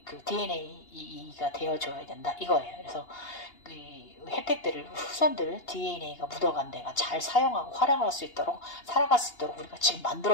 DNA가 되어줘야 된다 이거예요. 그래서 그 혜택들을 후손들 DNA가 묻어간 데가 잘 사용하고 활용할 수 있도록, 살아갈 수 있도록 우리가 지금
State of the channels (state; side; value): late; right; 2.8 ms